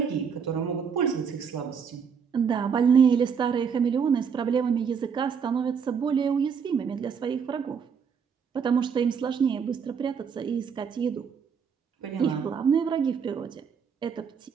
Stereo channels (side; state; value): left; quieter; 6.6 dB